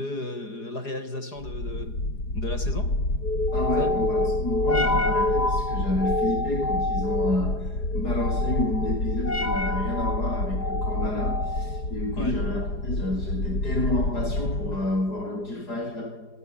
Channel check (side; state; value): right; late; 4.9 ms